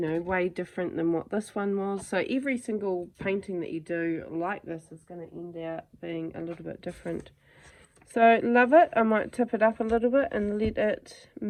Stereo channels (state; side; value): identical; both; correlation 1.00